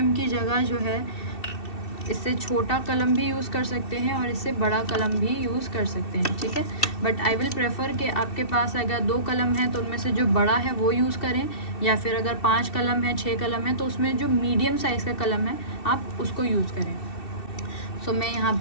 की जगह जो है इससे छोटा कलम भी यूज़ कर सकते हैं और इससे बड़ा कलम भी यूज़ कर सकते हैं, ठीक है। बट आई विल प्रेफर कि आपके पास अगर 2 कलम है तो उनमें से जो बड़ा है वो यूज़ करें, या फिर अगर 5 कलम है, 6 कलम है तो उसमें जो मीडियम साइज़ का कलम है आप उसको यूज़ करें। मैं यहाँ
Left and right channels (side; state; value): right; late; 2.7 ms